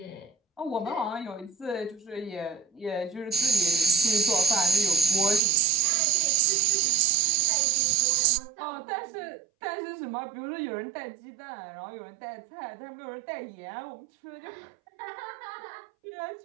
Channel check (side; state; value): left; drops out; at 5.4 s